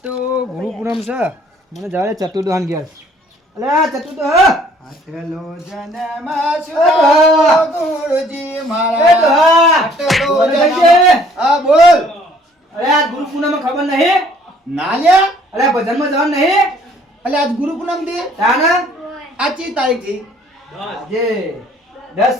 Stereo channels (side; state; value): both; normal; correlation 0.59